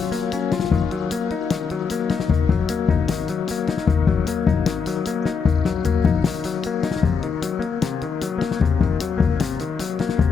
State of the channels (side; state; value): right; quieter; 5.5 dB